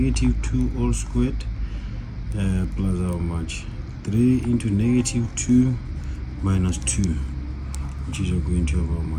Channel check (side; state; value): both; identical; correlation 1.00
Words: all squared plus how much? 3 into -2 minus 2, which is going to have how